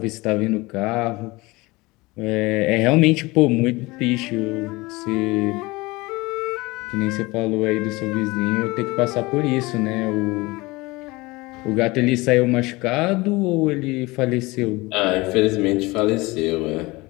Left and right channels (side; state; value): right; quieter; 22.5 dB